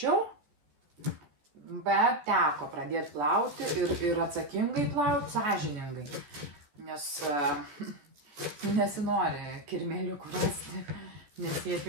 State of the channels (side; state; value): left; late; 14 ms